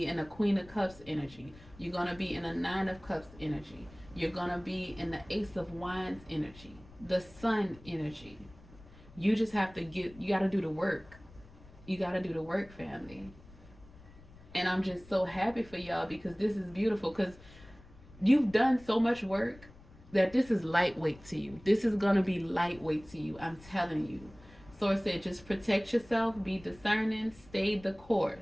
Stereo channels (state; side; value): noise; left; rumble, 22 dB below the sound